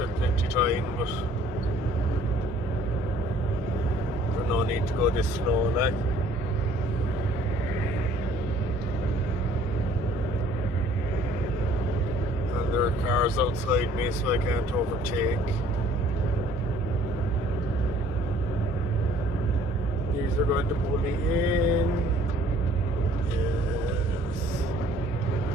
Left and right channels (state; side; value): normal; both; correlation 0.57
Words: plenty time, but there's no need to go this slow, like. And there are cars outside me, so I can't overtake. These are going to pull me in. Yes.